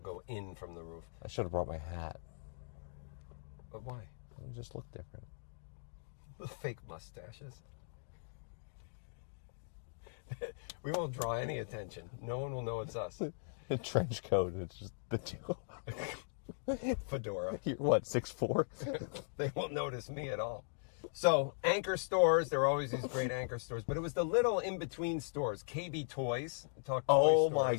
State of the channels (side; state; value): right; silent; digital silence